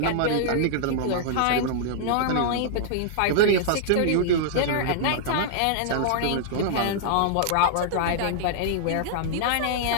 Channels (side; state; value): both; different; correlation -0.01